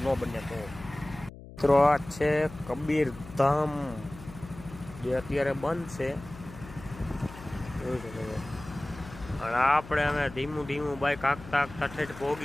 ન બને તો. મિત્રો આ છે કબીર ધામ, જે અત્યારે બંધ છે. અને આપણે અમે ધીમું ધીમું બાઈક આંકતા આંકતા ઠેઠ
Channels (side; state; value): left; noise; hum, 16 dB below the sound